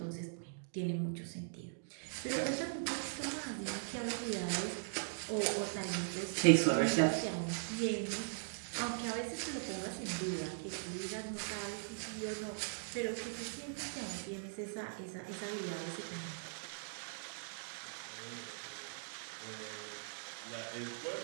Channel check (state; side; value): silent; left; digital silence